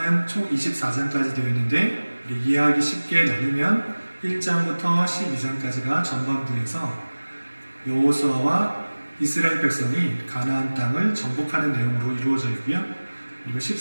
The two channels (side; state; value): both; inverted; correlation -1.00